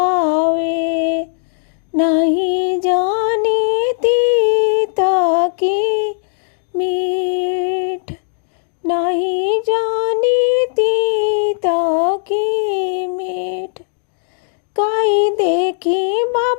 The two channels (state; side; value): silent; right; digital silence